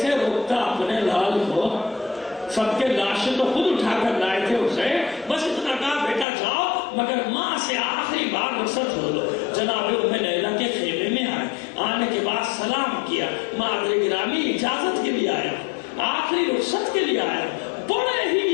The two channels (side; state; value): right; drops out; at 6.2 s